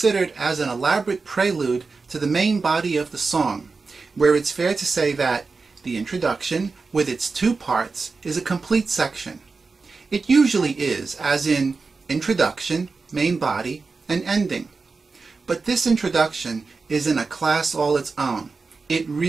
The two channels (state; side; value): quieter; left; 4.3 dB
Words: as an elaborate prelude to the main body of the song, where it's fair to say that the introduction, with its two parts, is a complete section. It usually is, as in introduction, main body, and ending. But this introduction is in a class all its own. It